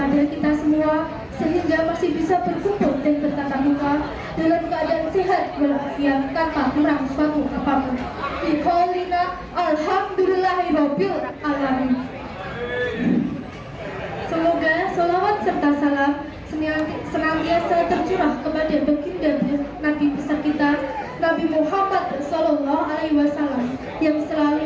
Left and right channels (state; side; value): identical; both; correlation 1.00